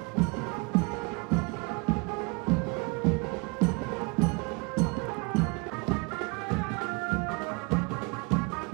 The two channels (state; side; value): quieter; left; 29.8 dB